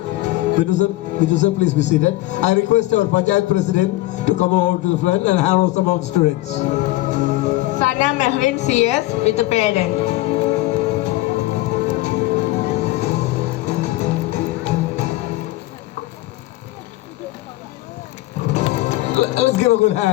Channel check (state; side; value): quieter; right; 17.9 dB